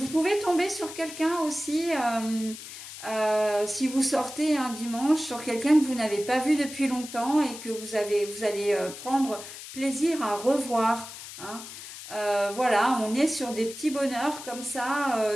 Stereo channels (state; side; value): noise; left; hiss, 12 dB below the sound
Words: pouvez tomber sur quelqu'un aussi... si vous sortez un dimanche sur quelqu'un que vous n'avez pas vu depuis longtemps et que vous allez prendre plaisir à revoir. Hein. Voilà, on est sur des petits bonheurs comme